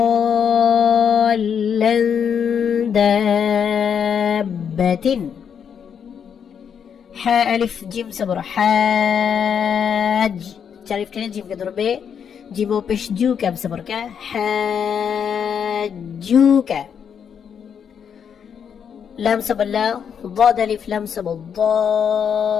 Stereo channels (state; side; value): quieter; right; 7.6 dB